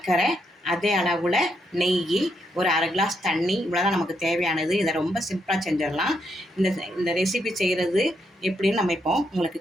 அதே அளவில் நெய், ஒரு அரை கிளாஸ் தண்ணி, இவ்வளோதான் நமக்கு தேவையானது. இதை ரொம்ப சிம்பிளாக செஞ்சிடலாம். இந்த ரெசிபி செய்கிறது எப்படின்னு நம்ம இப்போ உங்களுக்கு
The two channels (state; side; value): normal; both; correlation 0.78